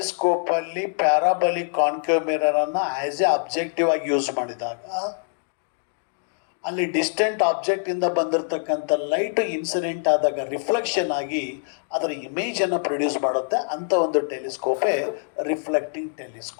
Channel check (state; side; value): silent; right; digital silence